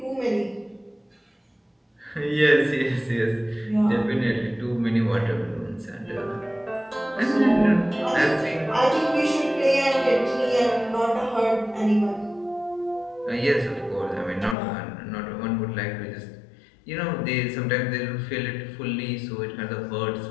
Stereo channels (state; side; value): drops out; right; at 14.6 s